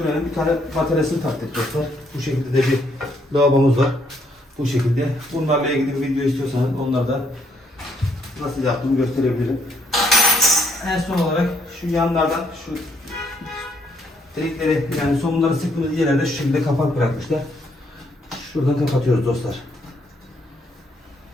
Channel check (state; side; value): normal; both; correlation 0.70